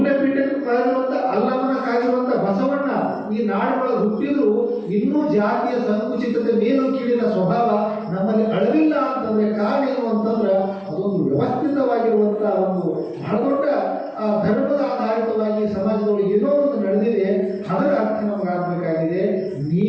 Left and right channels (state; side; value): identical; both; correlation 1.00